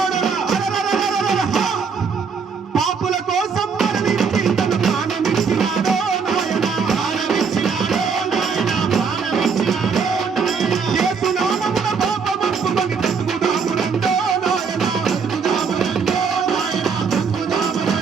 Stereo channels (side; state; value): left; quieter; 5.7 dB